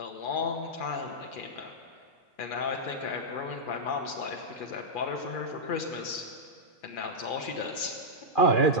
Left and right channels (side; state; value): right; late; 2.4 ms